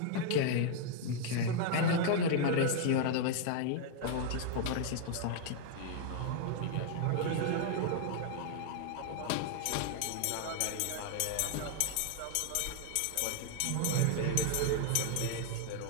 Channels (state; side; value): different; both; correlation 0.00